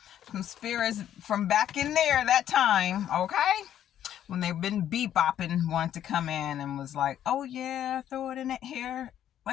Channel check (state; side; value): quieter; right; 10.8 dB